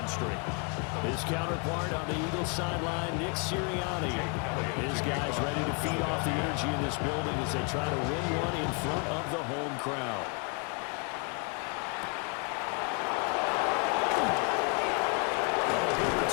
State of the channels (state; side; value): quieter; right; 34.8 dB